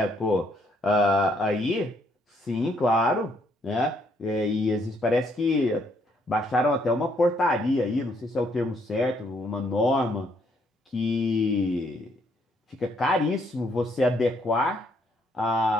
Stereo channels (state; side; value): normal; both; correlation 0.70